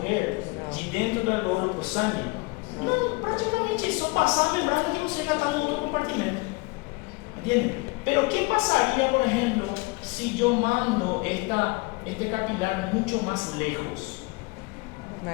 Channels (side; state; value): right; quieter; 26.3 dB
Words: de dentro do alveolo para o sangue? Não, praticamente é só passar a membrana que você já está no outro compartimento. ¿Entienden? Pero ¿qué pasaría, por ejemplo, si yo mando este capilar mucho más lejos?